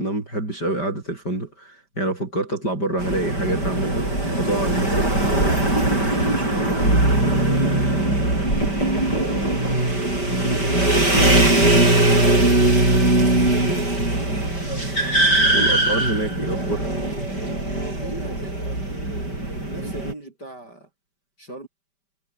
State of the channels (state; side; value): late; right; 5.1 ms